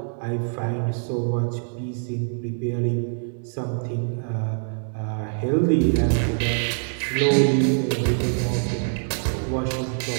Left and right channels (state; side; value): silent; left; digital silence